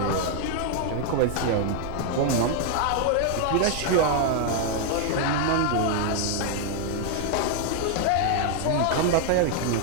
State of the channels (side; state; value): both; different; correlation 0.00